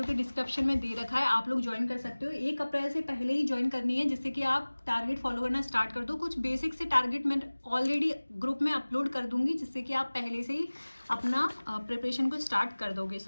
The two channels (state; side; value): inverted; both; correlation -1.00